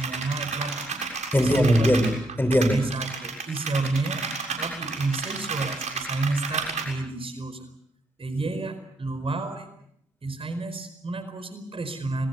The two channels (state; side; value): normal; both; correlation 0.77